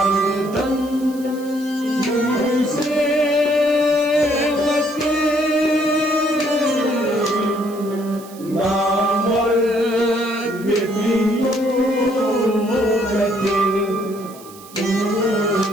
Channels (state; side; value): noise; right; hiss, 21 dB below the sound